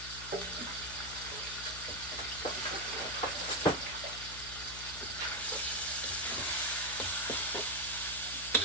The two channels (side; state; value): left; noise; hum, 12 dB below the sound